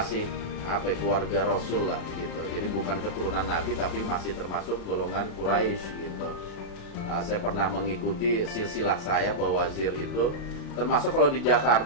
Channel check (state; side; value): late; right; 35 ms